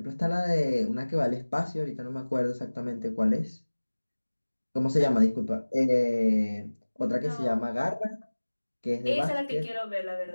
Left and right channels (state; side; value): inverted; both; correlation -1.00